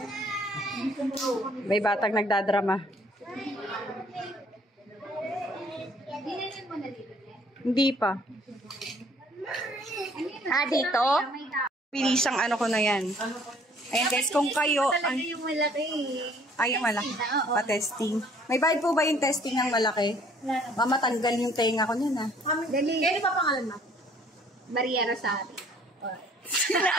May batang nagdadrama. Dinilin mo na dito. Hindi pa. Dito? May tao. Pilisang ano ko na yan. Ayan guys, kung kayo... Talaga yung malaki. Ay, yung malaki. Pa-testing. May bayad po ba yung testing ng malaki? Mamatanggal yung tenga ko niyan, ha? Dali. Ano pa pangalan mo? Maria Rosario.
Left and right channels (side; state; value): both; normal; correlation 0.59